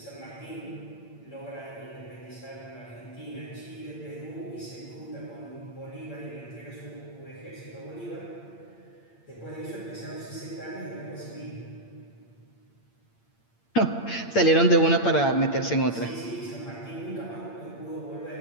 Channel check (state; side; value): late; right; 8.7 ms